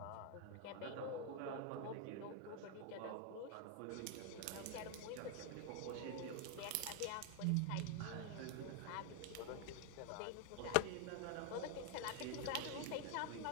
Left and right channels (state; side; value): different; both; correlation 0.01